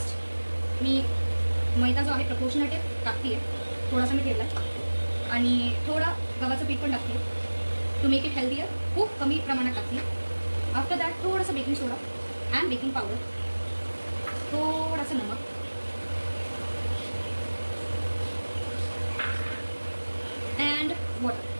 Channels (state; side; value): inverted; both; correlation -1.00